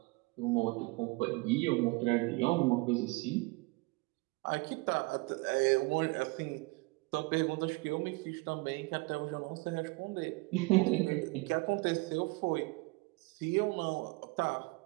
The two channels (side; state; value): left; quieter; 25.5 dB